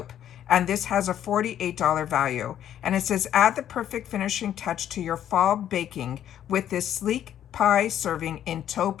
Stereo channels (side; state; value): right; quieter; 10.7 dB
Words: And this has a $48 value. And it says, add the perfect finishing touch to your fall baking with this sleek pie serving in